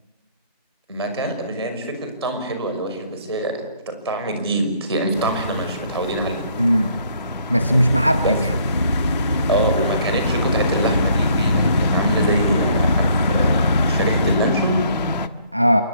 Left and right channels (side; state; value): both; inverted; correlation -0.64